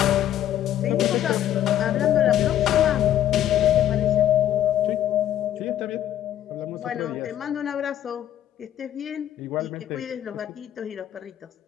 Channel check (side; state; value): right; quieter; 11.6 dB